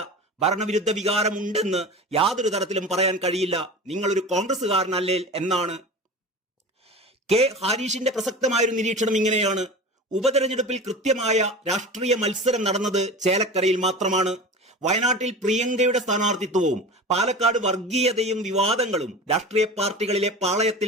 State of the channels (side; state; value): both; normal; correlation 0.33